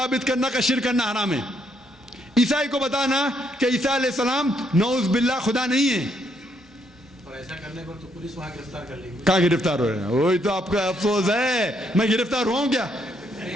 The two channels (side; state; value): both; normal; correlation 0.73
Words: کرنا کا شرک کرنا حرام ہے. عیسائی کو بتانا کہ عیسیٰ علیہ السلام نعوذ باللہ خدا نہیں ہے, اور ایسا کرنے پر تو پولیس وہاں گرفتار کر لے گی. کہاں گرفتار ہو رہے ہیں؟ وہی تو آپ کا افسوس ہے. میں گرفتار ہوا ہوں کیا؟